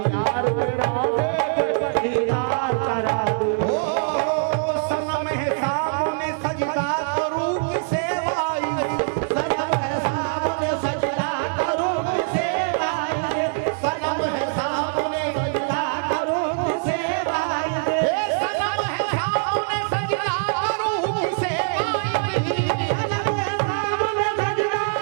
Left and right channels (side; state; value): left; silent; 63 dB below the other